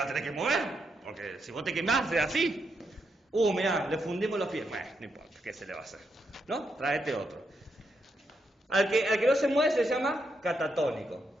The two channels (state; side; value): normal; both; correlation 0.81